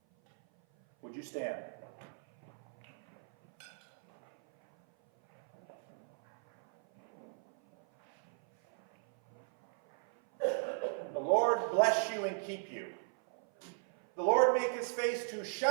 Would you stand? The Lord bless you and keep you. The Lord make his face to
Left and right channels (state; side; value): silent; left; 54 dB below the other